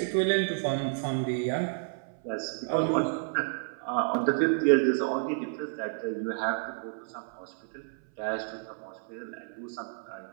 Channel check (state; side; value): silent; left; 58 dB below the other